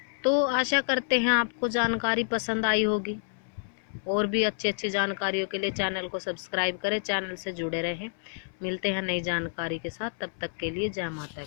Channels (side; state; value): right; silent; 59 dB below the other